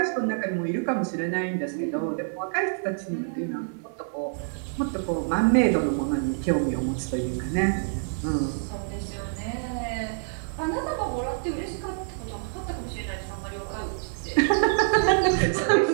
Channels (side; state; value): left; silent; 60 dB below the other